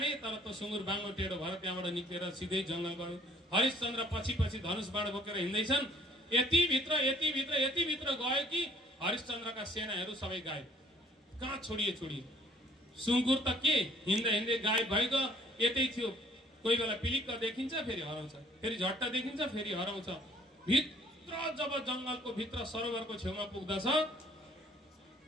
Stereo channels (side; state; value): both; normal; correlation 0.58